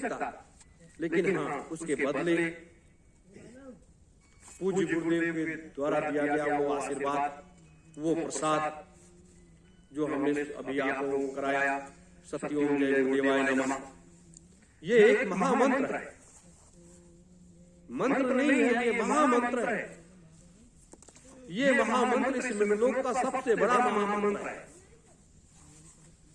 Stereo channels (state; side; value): identical; both; correlation 1.00